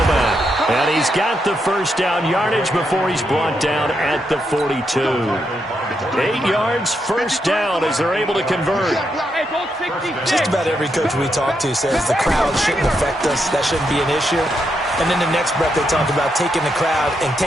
And he's got the first down yardage before he's brought down at the 42. 8 yards, first down as they're able to convert. Just about every coach we talk to says the crowd shouldn't affect us. That shouldn't be an issue. And then the next breath they talk about taking the crowd and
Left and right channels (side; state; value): both; normal; correlation 0.81